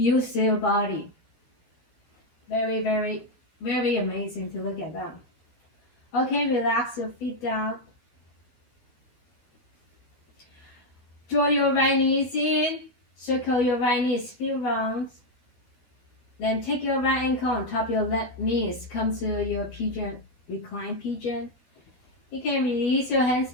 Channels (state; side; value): late; right; 13 ms